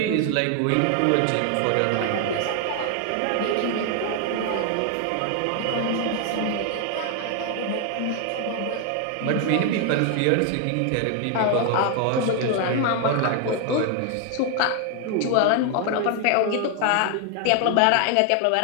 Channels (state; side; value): different; both; correlation 0.00